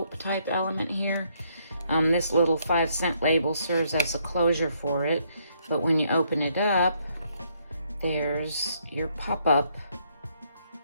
type element here. This little 5-cent label serves as a closure for it, but when you open it up, there's your pop-up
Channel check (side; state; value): both; inverted; correlation -0.71